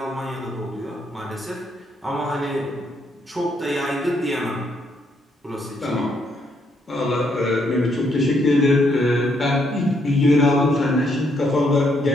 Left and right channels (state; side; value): normal; both; correlation 0.74